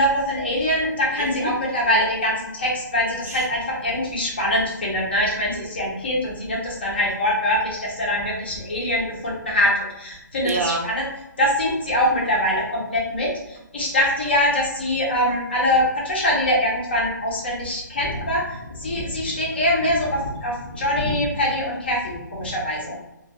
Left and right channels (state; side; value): normal; both; correlation -0.11